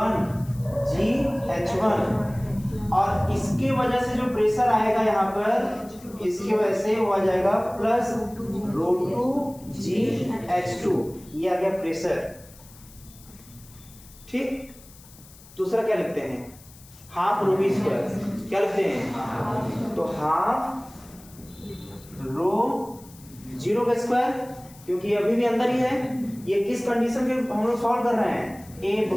G H1, और इसके वजह से जो प्रेशर आएगा यहाँ पर इसकी वजह से वो आ जाएगा प्लस ρ2 G H2, ये आ गया प्रेशर। ठीक, दूसरा क्या लिखते हैं, हाफ रो बी स्क्वायर, क्या लिखते हैं, तो हाफ रो जीरो का स्क्वायर, क्योंकि ये अभी भी अंदर ही है, ये किस कंडीशन के हम लोग सॉल्व कर रहे हैं, ए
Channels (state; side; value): noise; left; hiss, 22 dB below the sound